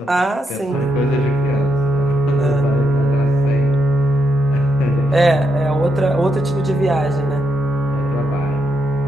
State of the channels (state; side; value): normal; both; correlation 0.80